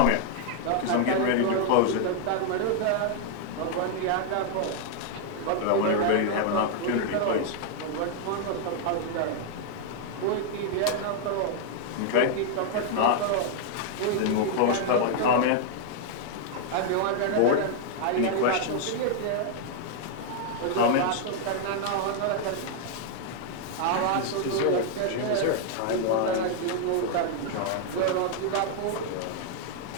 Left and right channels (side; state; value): both; different; correlation 0.00